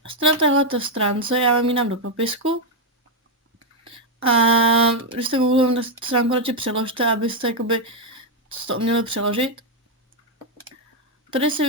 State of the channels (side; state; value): both; normal; correlation 0.02